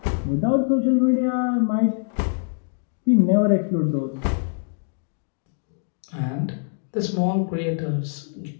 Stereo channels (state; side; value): silent; right; 63 dB below the other